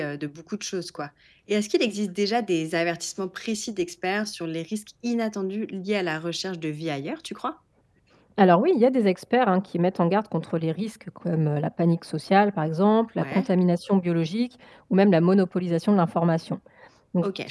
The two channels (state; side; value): identical; both; correlation 1.00